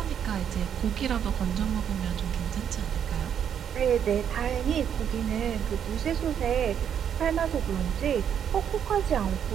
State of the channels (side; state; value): left; quieter; 8.7 dB